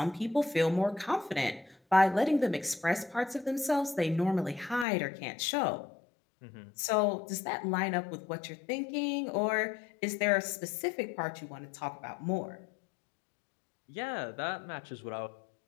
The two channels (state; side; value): drops out; right; at 4.9 s